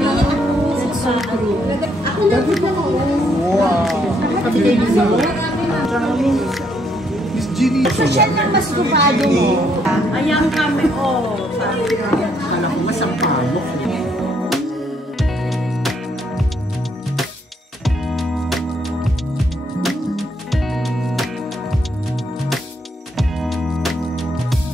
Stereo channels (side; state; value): both; normal; correlation 0.72